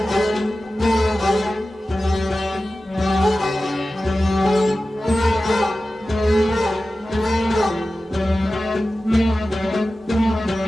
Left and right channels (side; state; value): both; normal; correlation 0.95